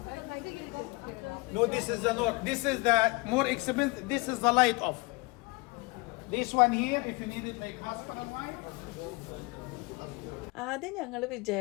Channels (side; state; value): right; quieter; 25.7 dB